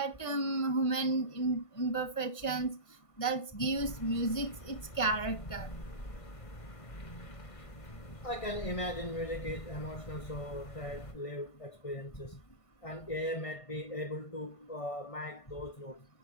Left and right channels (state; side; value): late; right; 1.5 ms